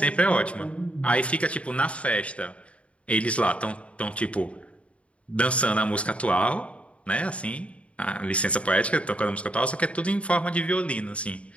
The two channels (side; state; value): right; late; 0.062 ms